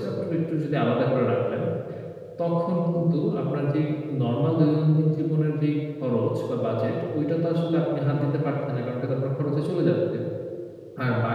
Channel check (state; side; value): identical; both; correlation 1.00